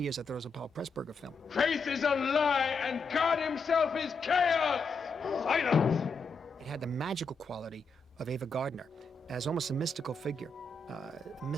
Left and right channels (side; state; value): right; quieter; 3.8 dB